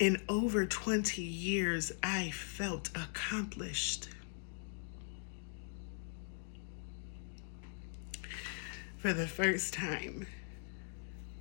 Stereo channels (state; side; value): silent; right; 51 dB below the other